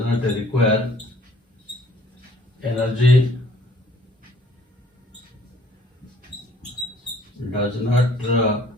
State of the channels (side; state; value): both; normal; correlation 0.58